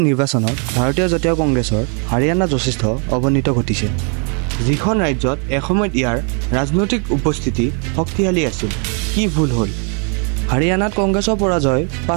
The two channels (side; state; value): left; quieter; 38.7 dB